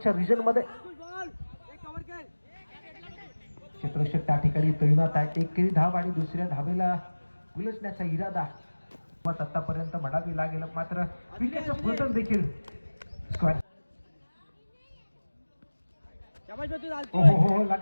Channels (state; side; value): inverted; both; correlation -1.00